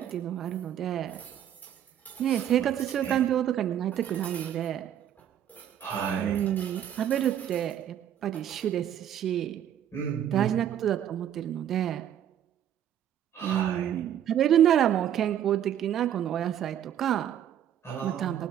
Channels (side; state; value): left; quieter; 10.3 dB